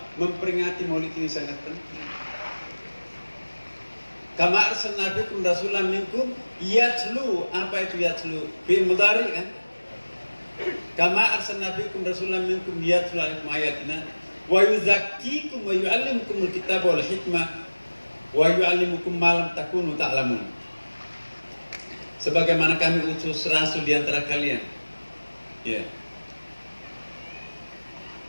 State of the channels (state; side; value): inverted; both; correlation -1.00